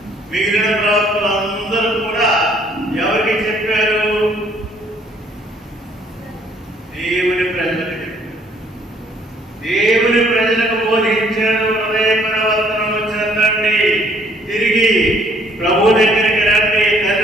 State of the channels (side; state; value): both; normal; correlation 0.62